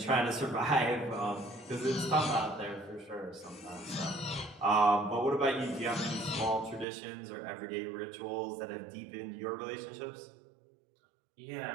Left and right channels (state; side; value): drops out; left; at 6.9 s